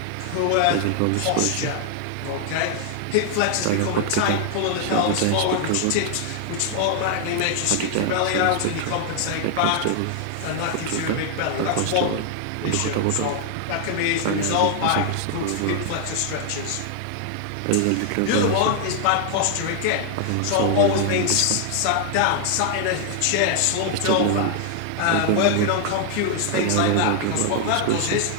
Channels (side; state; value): both; different; correlation 0.00